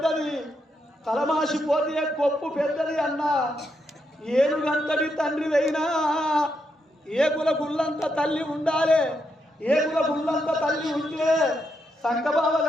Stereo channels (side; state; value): both; normal; correlation 0.81